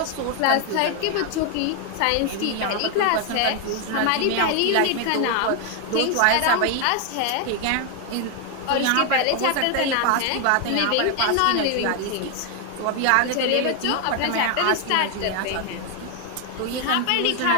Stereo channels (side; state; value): both; different; correlation 0.01